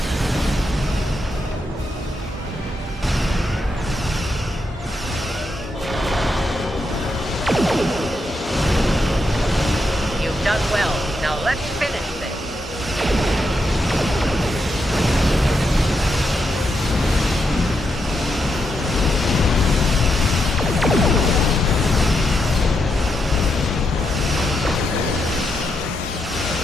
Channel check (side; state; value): both; normal; correlation 0.83